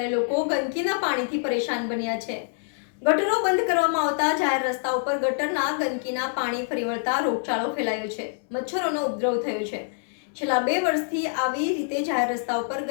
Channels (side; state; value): right; silent; digital silence